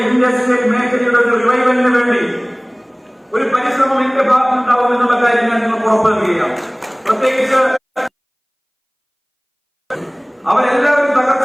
ഇൻഡസ്ട്രിയൽ മേഖലയുടെ ഒരു റിവൈവലിന് വേണ്ടി ഒരു പരിശ്രമം എന്റെ ഭാഗത്തുണ്ടാവും എന്നുള്ള കാര്യം ഞാൻ നിങ്ങൾക്ക് ഉറപ്പ് നൽകുകയാണ്. പ്രത്യേകിച്ച് അവരെല്ലാവരും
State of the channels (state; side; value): identical; both; correlation 1.00